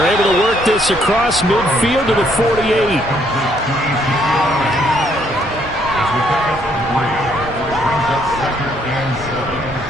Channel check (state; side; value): normal; both; correlation 0.68